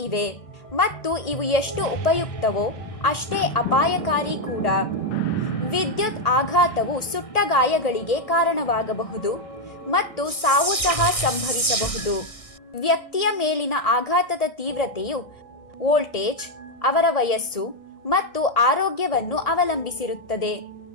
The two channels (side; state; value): right; late; 1.5 ms